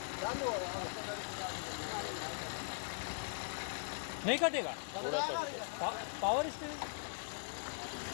नहीं कटेगा। थोड़ा सा पावर स्टीयरिंग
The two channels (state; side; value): silent; right; 51 dB below the other